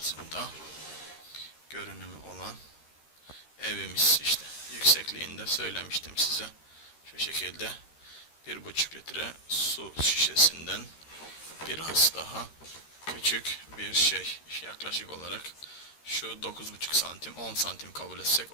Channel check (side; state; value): right; late; 13 ms